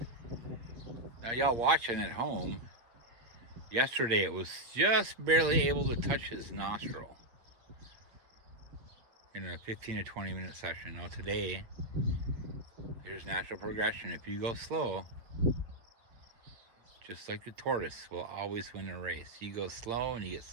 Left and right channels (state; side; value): late; left; 8.6 ms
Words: Now y'all watching at home, yesterday it was just barely able to touch his nostril in a 15 to 20 minute session. Now today, there's natural progression. If you go slow, just like the tortoise will always win a race. You go slow and you get